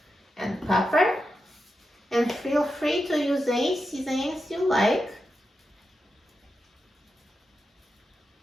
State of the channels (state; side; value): normal; both; correlation 0.88